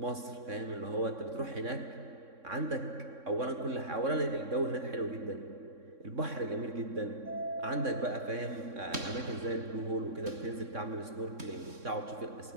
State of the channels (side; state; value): left; late; 3.6 ms